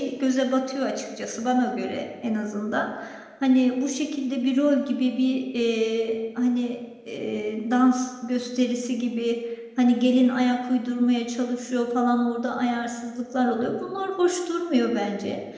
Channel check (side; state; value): both; identical; correlation 1.00